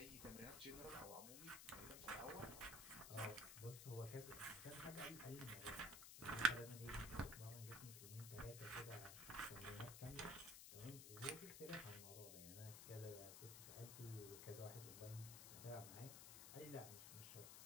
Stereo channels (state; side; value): noise; left; hiss, 7 dB below the sound